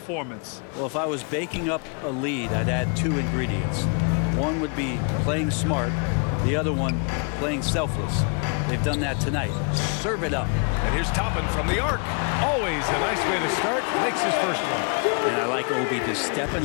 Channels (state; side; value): quieter; right; 37.2 dB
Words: Well, if I was baking up a lead, I'd add 2 ingredients. One would be playing smart. The other one, playing selfless. They've done that tonight. Serve it up. And here's Toppin from the arc. Always a nice way to start. Makes his first one. And I like Obi just